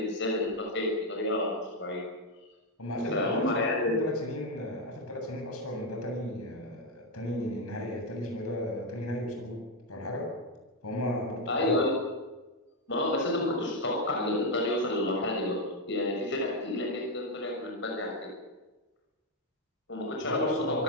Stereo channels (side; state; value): both; normal; correlation 0.03